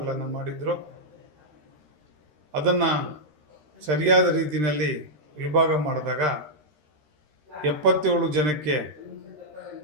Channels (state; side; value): late; left; 13 ms